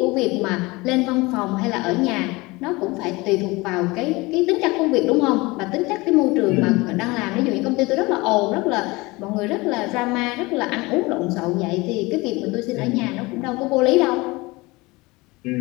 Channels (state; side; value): quieter; right; 23.0 dB